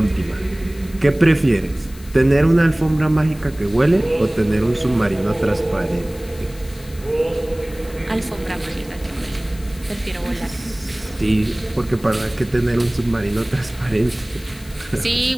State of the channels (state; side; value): noise; left; hiss, 21 dB below the sound